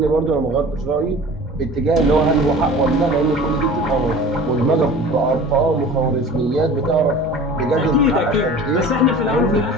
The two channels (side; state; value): both; normal; correlation 0.41